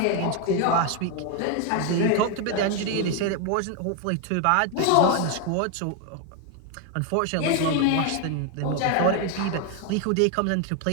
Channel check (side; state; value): both; different; correlation 0.01